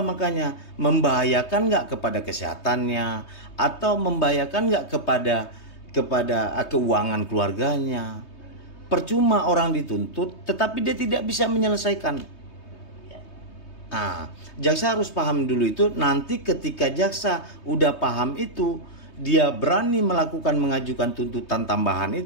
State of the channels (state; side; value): late; right; 3.2 ms